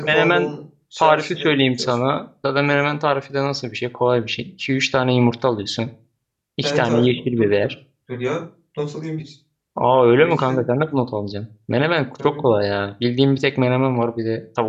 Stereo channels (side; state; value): both; identical; correlation 1.00